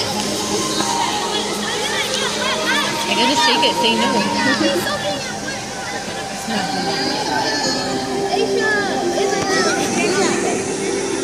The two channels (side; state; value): left; noise; hum, 24 dB below the sound